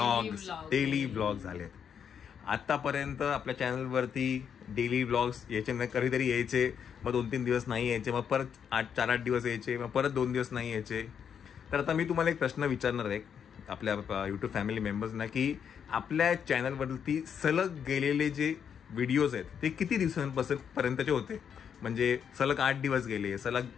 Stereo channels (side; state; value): right; quieter; 7.8 dB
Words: daily vlog झालेत. आतापर्यंत आपल्या चॅनलवरती डेली व्लॉग्स यायचे, कधीतरी यायचे, मग 2-3 दिवस नाही यायचे, मग परत 4-8 दिवस यायचे, मग परत 2 दिवस नाही यायचे. तर आता मी तुम्हाला एक प्रश्न विचारणार आहे आपल्या यूट्यूब फॅमिली मेंबर्सना, की आपल्या चॅनलवरती सलग गेलेले जे व्हिडिओज आहेत ते किती दिवसांपर्यंतचे होते. म्हणजे सलग 8 दिवस गेले, सलग